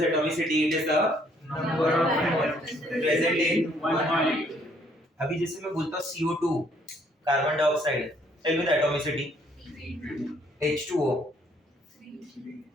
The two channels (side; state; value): both; normal; correlation 0.65